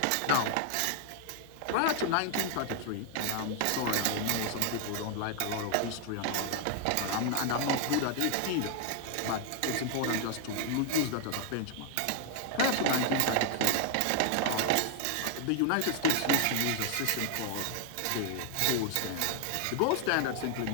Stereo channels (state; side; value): different; both; correlation 0.00